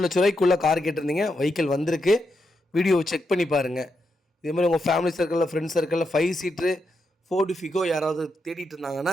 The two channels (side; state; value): both; normal; correlation 0.83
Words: லட்ச ரூபாய்க்குள்ளே கார் கேட்டிருந்தீங்க. வெஹிக்கிள் வந்திருக்கு. வீடியோவை செக் பண்ணி பாருங்கள். இதே மாதிரி உங்கள் ஃபேமிலி சர்க்கிளில், ஃப்ரெண்ட்ஸ் சர்க்கிளில் 5 சீட்ரு ஃபோர்டு ஃபிகோ யாராவது தேடிட்டு